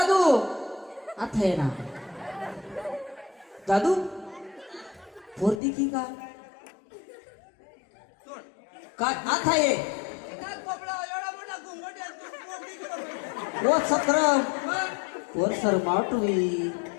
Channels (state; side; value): drops out; right; at 5.6 s